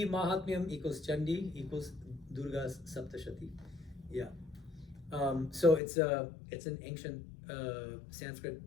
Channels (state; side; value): drops out; right; at 5.8 s